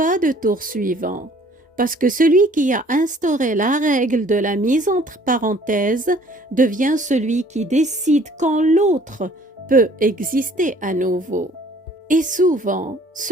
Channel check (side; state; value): both; normal; correlation 0.56